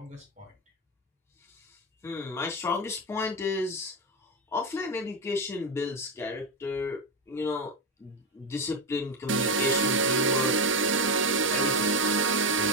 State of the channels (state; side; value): normal; both; correlation 0.13